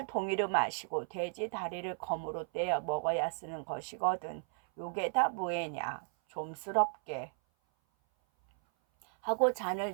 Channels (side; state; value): left; silent; 55 dB below the other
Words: 동이로 마시고 돼지 다리를 검으로 떼어 먹어야 쓰는 것이거든. 요게 다 뭐애냐? 좀스럽게 하고 잔을